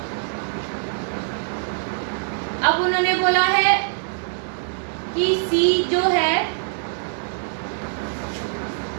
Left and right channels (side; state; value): left; silent; 63 dB below the other